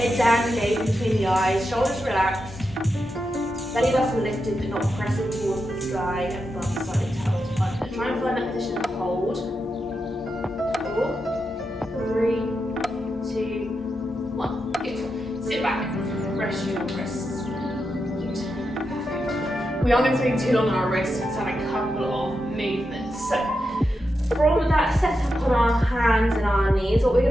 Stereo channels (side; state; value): both; normal; correlation 0.87